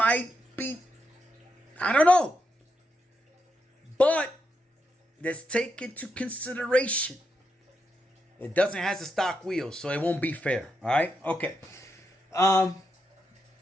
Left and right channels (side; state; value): both; normal; correlation 0.83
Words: be, I don't know. But let's take into consideration it doesn't have the stock wheels, so it won't be fair. All right? Okay.